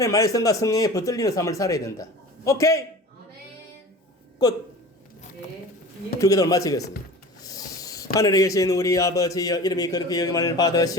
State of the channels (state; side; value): normal; both; correlation 0.37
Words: 말씀과 성령에 붙들리는 삶을 살아야 된다. 오케이? 끝. 주기도를 마치겠습니다. 하늘에 계신 우리 아버지여 이름이 그렇게 여김을